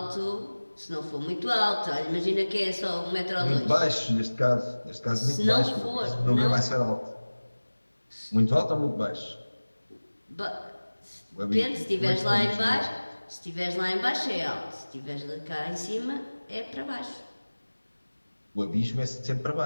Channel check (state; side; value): inverted; both; correlation -1.00